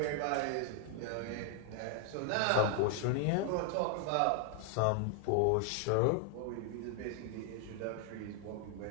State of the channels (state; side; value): different; both; correlation 0.00